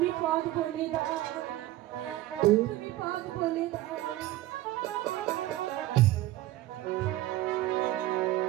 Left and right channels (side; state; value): left; quieter; 15.9 dB